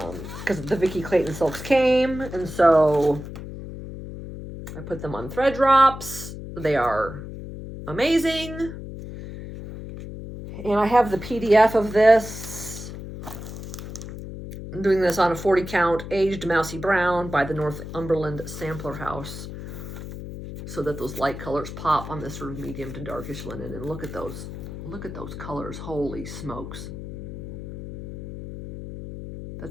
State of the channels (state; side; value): noise; left; hum, 10 dB below the sound